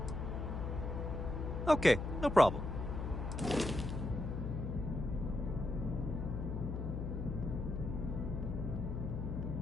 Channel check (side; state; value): left; noise; hum, 3 dB below the sound